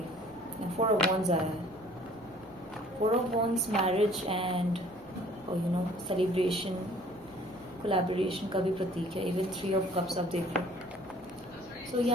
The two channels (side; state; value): both; normal; correlation 0.54